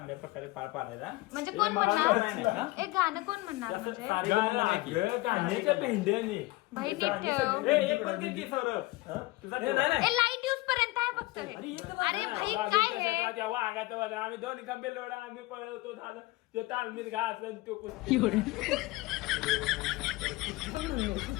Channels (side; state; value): right; quieter; 20.9 dB